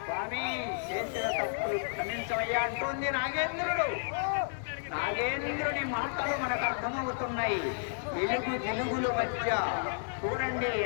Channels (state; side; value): silent; right; digital silence